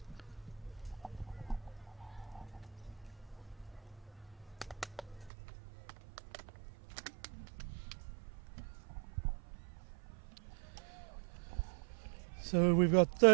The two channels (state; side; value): drops out; left; at 5.3 s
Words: So we've got